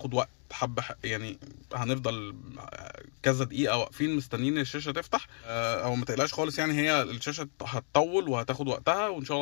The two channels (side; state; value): right; silent; 57 dB below the other